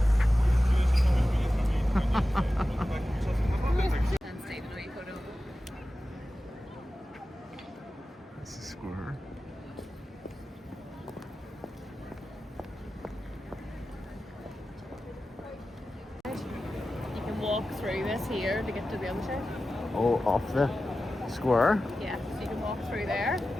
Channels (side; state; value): both; normal; correlation 0.94